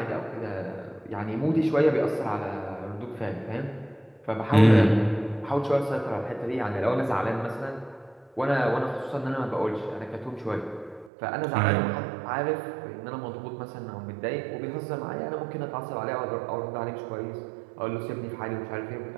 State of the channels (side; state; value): left; drops out; at 11.1 s